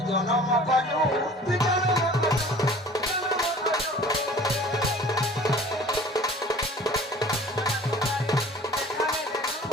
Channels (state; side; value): normal; both; correlation 0.47